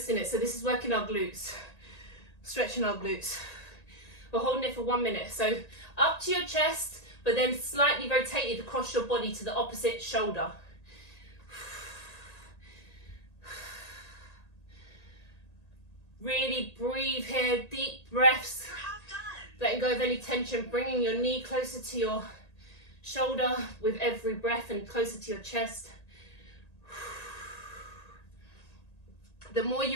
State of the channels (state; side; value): late; right; 1.8 ms